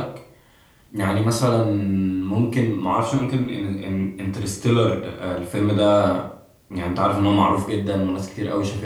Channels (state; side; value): identical; both; correlation 1.00